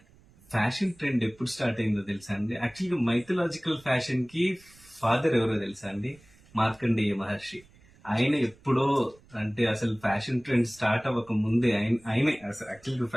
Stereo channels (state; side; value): noise; right; rumble, 27 dB below the sound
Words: ఫ్యాషన్ ట్రెండ్ ఎప్పుడు స్టార్ట్ అయిందో తెలుసా అండి? యాక్చువల్గా మైథలాజికల్ ఫ్యాషన్ కి ఫాదర్ ఎవరో తెలుసా అండి? మార్కండేయ మహర్షి. ఆయన ఎప్పుడో, అంటే అసలు ఫ్యాషన్ ట్రెండ్ స్టార్ట్ అవ్వక ముందే ఆయనే అసలు యాక్చువల్గా